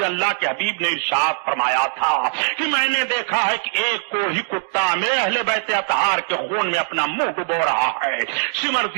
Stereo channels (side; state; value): left; silent; 62 dB below the other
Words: اللہ کے حبیب نے ارشاد فرمایا تھا کہ میں نے نے دیکھا ہے کہ ایک کو ہی کتا میرے اہل بیت اطہار کے خون میں اپنا منہ ڈبو رہا ہے۔ شمر